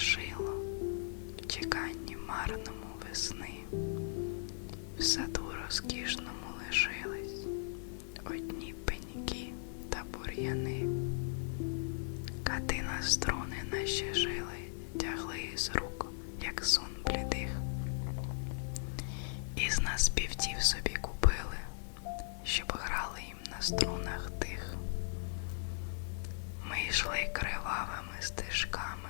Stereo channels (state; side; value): silent; right; 52 dB below the other